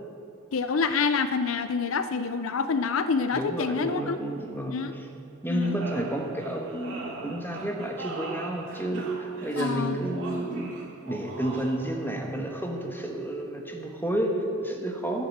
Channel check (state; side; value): normal; both; correlation 0.39